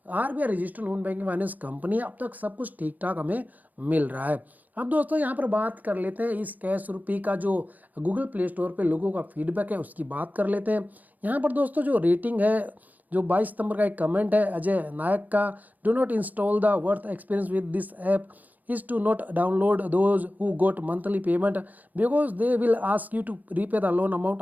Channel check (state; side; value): late; left; 0.082 ms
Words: RBI registered non banking finance company. अब तक सब कुछ ठीक ठाक हमें मिल रहा है। अब दोस्तों यहाँ पर बात कर लेते हैं इस कैश रुपी का जो गूगल प्ले स्टोर पे लोगों का फीडबैक है उसकी बात कर लेते हैं। यहाँ पर दोस्तों जो रेटिंग है, जो 22 सितंबर का एक कमेंट है अजय नायक का, do not install the worth experience with this app is to not download those who got monthly payment because they will ask you to repay the loan amount